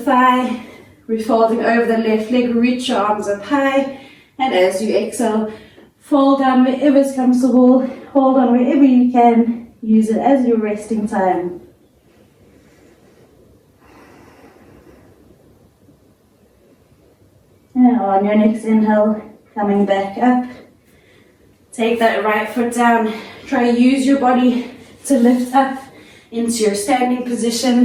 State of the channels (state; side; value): identical; both; correlation 1.00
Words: We're folding over the left leg. Reach your arms up high. And as you exhale, fold down wherever is comfortable. Hold on wherever you can. Use it as your resting time. And on your next inhale, coming back up. Take that right foot down. Try to use your body to lift up into your standing